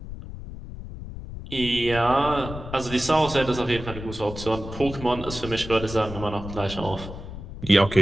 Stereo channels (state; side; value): noise; left; rumble, 11 dB below the sound